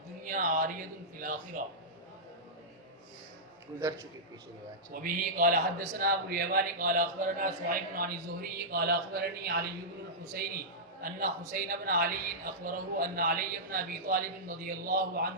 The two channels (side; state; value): both; normal; correlation -0.12